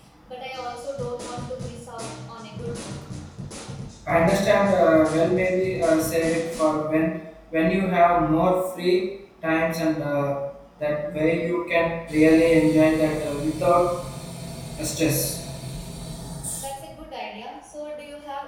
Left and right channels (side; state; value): both; identical; correlation 1.00